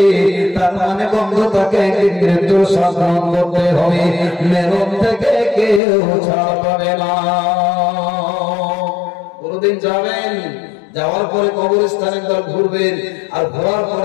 তার মানে বন্ধু তাকে একদিন মৃত্যুর স্বাদ গ্রহণ করতে হবে, মেরুন থেকে কেউ ছাড় পাবে না। কোনদিন যাবেন, যাওয়ার পরে কবরস্থানে একবার ঘুরবেন, আর ঘোরার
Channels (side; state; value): right; drops out; at 5.8 s